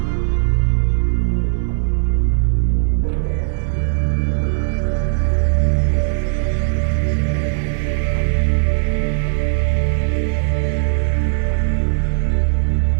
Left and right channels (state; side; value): silent; left; 61 dB below the other